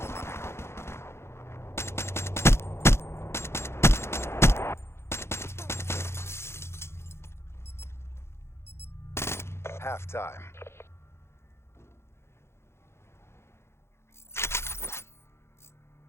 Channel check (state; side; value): late; right; 0.12 ms